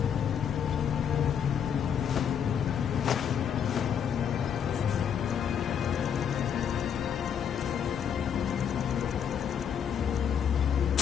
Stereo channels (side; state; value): right; quieter; 8.1 dB